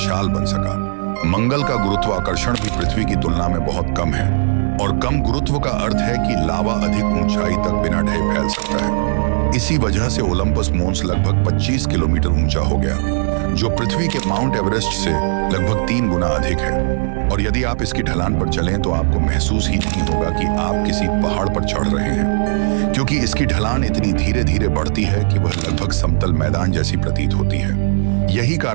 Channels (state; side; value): silent; left; digital silence